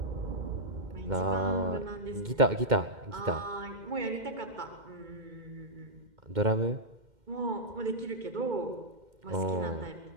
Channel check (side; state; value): left; late; 2.2 ms